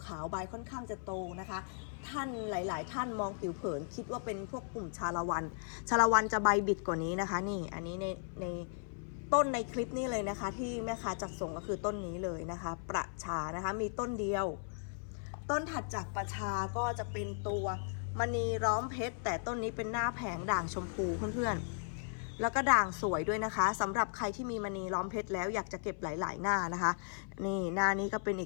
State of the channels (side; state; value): right; silent; 54 dB below the other